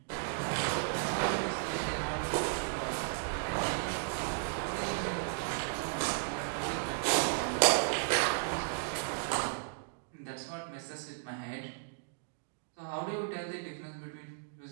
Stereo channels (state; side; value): silent; left; digital silence